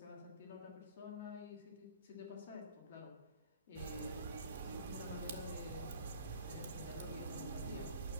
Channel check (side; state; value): both; inverted; correlation -0.48